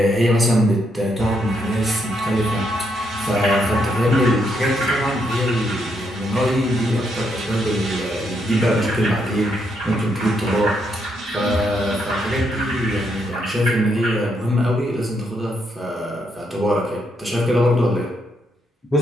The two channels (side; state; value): both; normal; correlation 0.77